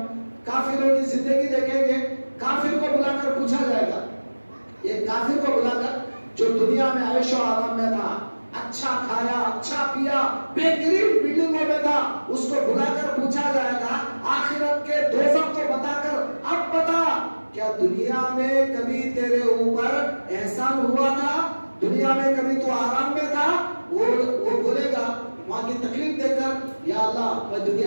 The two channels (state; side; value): inverted; both; correlation -1.00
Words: کافروں کی زندگی دیکھیں گے، کافر کو بلا کر پوچھا جائے گا، یہ کافر کو بلا کر جو دنیا میں عیش و آرام میں تھا، اچھا کھایا اچھا پیا، بہترین بلڈنگوں میں تھا، اس کو بلا کر پوچھا جائے گا آخرت کے دوزخ کو بتا کر، اب بتا کیا دنیا میں کبھی تیرے اوپر احسان ہوا تھا، دنیا میں کبھی تو آرام میں تھا؟ وہ بولے گا وہاں کی تکلیف دے کر، یا اللہ میں